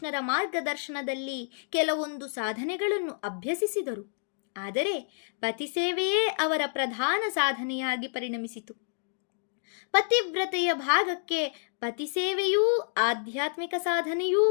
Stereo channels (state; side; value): silent; right; digital silence